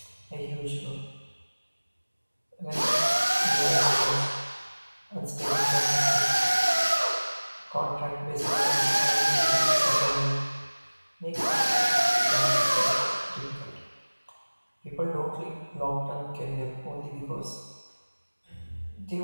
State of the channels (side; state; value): both; inverted; correlation -1.00